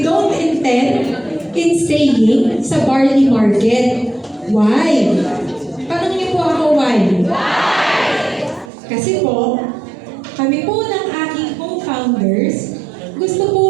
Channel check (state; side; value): drops out; left; at 8.7 s